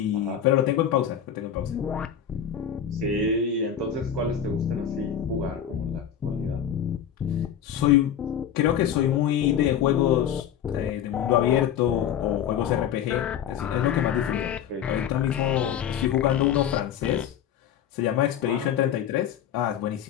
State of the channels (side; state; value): right; quieter; 9.3 dB